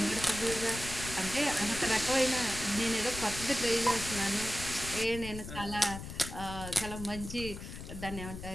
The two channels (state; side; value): noise; left; rumble, 10 dB below the sound